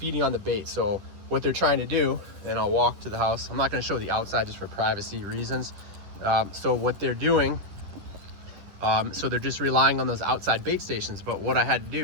on the bait. So what they're trying to do, and I'll walk to the house, I'm not going to show the outside just for privacy reasons. So what they're doing, so they're just relying on those outside bait stations. But what I had to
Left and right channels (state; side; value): late; left; 11 ms